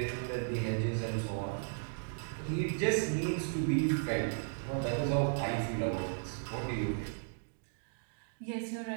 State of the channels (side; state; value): left; silent; digital silence